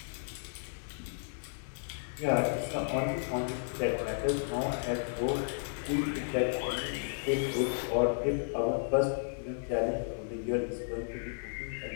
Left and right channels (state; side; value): silent; right; digital silence